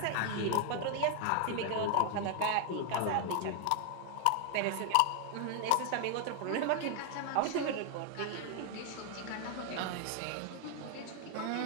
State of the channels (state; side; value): different; both; correlation 0.00